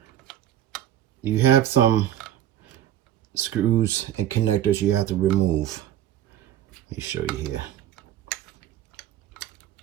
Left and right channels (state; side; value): quieter; left; 12.0 dB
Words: you have some screws and connectors you have to remove. Let me show you here.